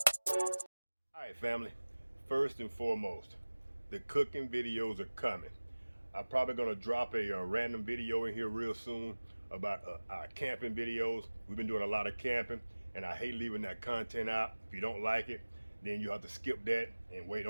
Alright, family, first and foremost, the cooking videos are coming. I'm probably going to drop a random video in here real soon about our camping videos. We've been doing a lot of camping, and I hate leaving that content out. If you don't like it, then you have to skip that and wait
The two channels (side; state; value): both; inverted; correlation -1.00